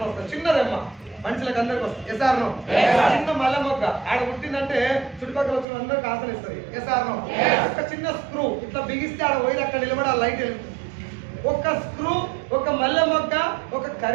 వస్తుంది, చిన్న రెమ్మ మనుషులకు అందరికి వస్తుంది. ఎస్ఆర్నో? చిన్న మల్ల మొగ్గ ఆడ పుట్టిందంటే చుట్టుపక్కల వచ్చిన అందరికి ఆసన ఇస్తుంది. ఎస్ఆర్నో? ఒక చిన్న స్క్రూ ఇట్లా బిగిస్తే ఆడ పోయి అక్కడ నిలబడి ఆ లైట్ వెళ్తుంది. ఒక స్క్రూ, ఒక మల్లె మొగ్గ, ఒక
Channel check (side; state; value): left; drops out; at 5.7 s